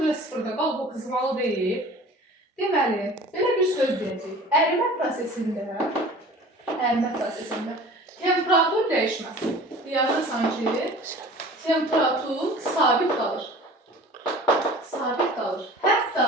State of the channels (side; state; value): both; normal; correlation 0.43